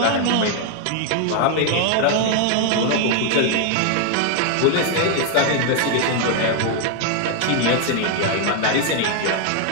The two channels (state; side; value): different; both; correlation 0.00